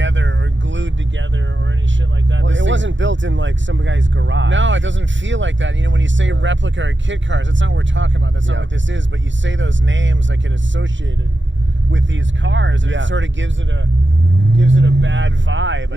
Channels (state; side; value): late; left; 0.54 ms